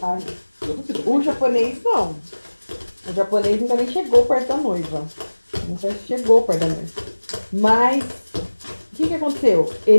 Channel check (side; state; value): both; inverted; correlation -1.00